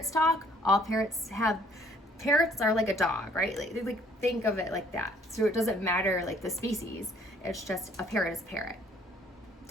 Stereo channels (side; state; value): both; normal; correlation 0.61